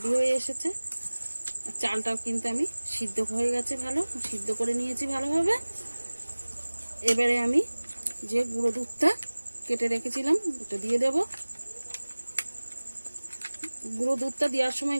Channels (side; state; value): both; inverted; correlation -1.00